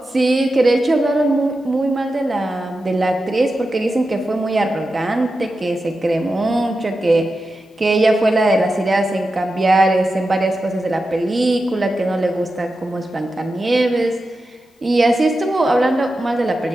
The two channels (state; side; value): normal; both; correlation 0.91